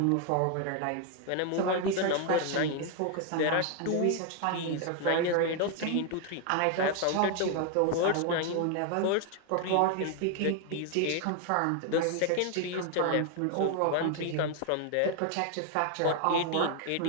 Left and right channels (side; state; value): both; different; correlation 0.01